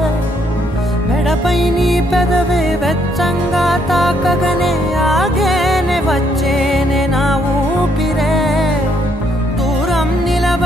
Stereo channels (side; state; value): both; normal; correlation 0.71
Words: మెడపై నీ పెదవే వెచ్చంగా తాకగనే ఆగేనే వచ్చేనే నా ఊపిరే దూరం